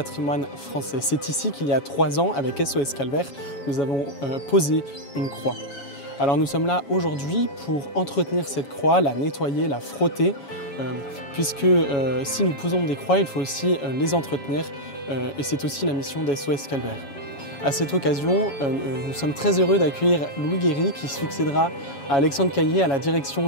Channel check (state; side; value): late; right; 7.2 ms